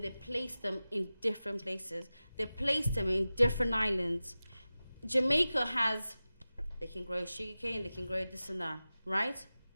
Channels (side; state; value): both; inverted; correlation -0.96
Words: they placed them in different places. They placed them in different islands. Jamaica they can grow sugarcane, they can grow this and that, right?